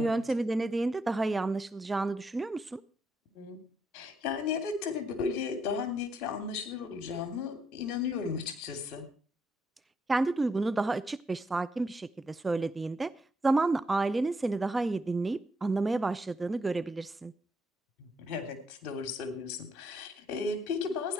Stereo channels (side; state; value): both; normal; correlation 0.77